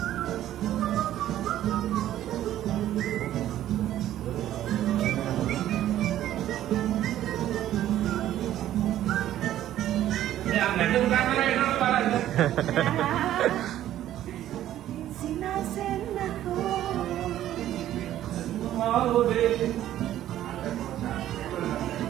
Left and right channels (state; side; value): quieter; left; 12.6 dB